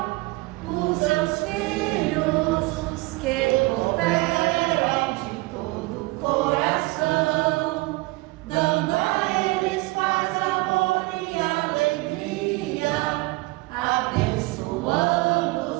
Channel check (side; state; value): left; quieter; 22.9 dB